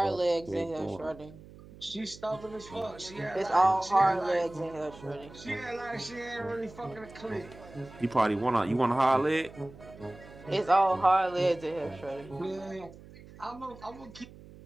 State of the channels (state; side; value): noise; right; hum, 19 dB below the sound